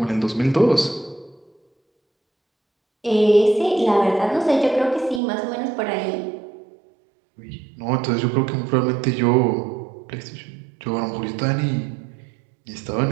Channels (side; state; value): left; drops out; at 5.2 s